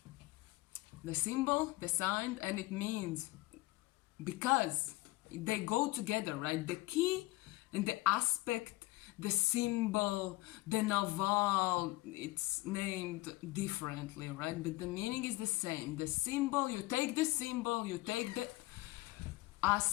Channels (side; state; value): right; quieter; 20.5 dB